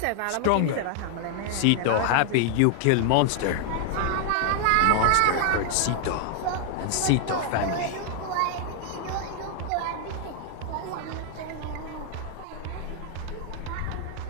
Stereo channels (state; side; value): different; both; correlation 0.00